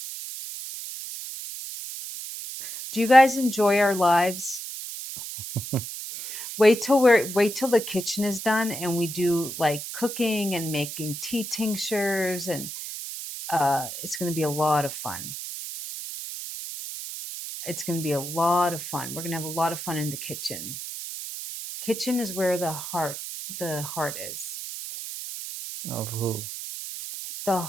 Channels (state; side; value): noise; right; hiss, 8 dB below the sound